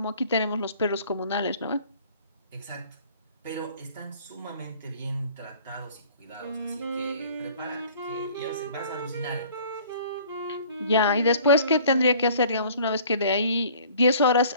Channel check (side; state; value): both; inverted; correlation -0.51